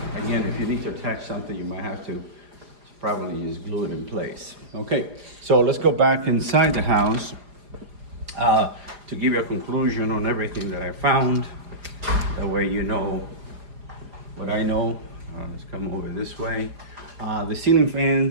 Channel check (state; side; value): late; left; 4.9 ms